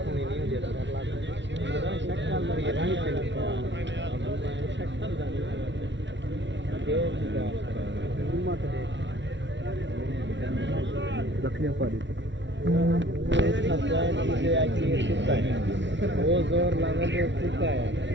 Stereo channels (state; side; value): late; left; 0.53 ms